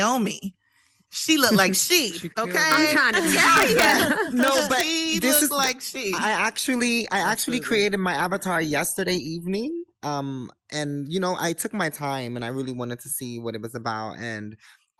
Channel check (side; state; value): both; identical; correlation 1.00